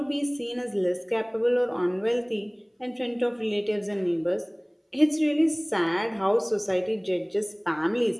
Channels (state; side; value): identical; both; correlation 1.00